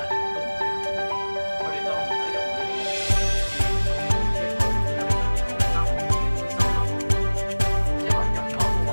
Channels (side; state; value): both; inverted; correlation -1.00